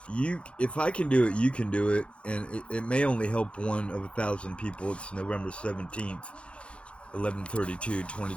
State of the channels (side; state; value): right; late; 0.059 ms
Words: if I can do it, you can do it, and it may only help one of 1,000 people. It's November 17th, 11:32,